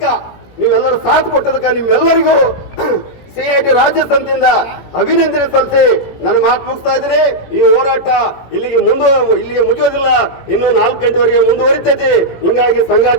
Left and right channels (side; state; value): right; late; 17 ms